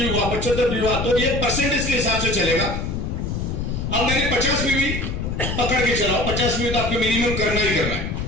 हुआ, 75 पीवी हुआ, तो ये परसेंटेज के हिसाब से चलेगा। अब मैंने 50 पीवी पकड़ के चलाओ, 50 पीवी तो आपको मिनिमम करना ही करना है।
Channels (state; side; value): noise; left; rumble, 3 dB below the sound